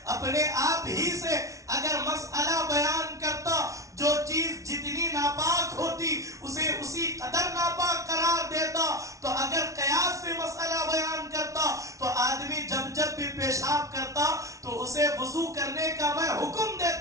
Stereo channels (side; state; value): left; late; 0.15 ms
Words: اپنے آپ ہی سے اگر مسئلہ بیان کرتا، جو چیز جتنی ناپاک ہوتی اسے اسی قدر ناپاک قرار دیتا، تو اگر قیاس سے مسئلہ بیان کرتا تو آدمی جب بھی پیشاب کرتا تو اسے وضو کرنے کا میں حکم